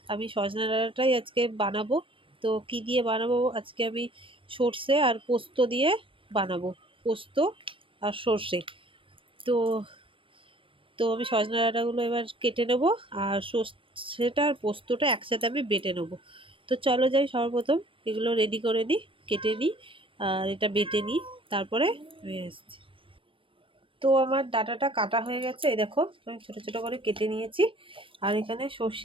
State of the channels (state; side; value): late; left; 0.25 ms